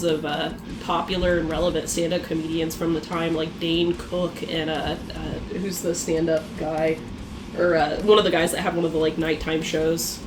of popular and relevant stand-up comedians from the time like Dane Cook and who's the stand-up guy. Or one of the guys that had one of the like nighttime shows.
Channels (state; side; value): identical; both; correlation 1.00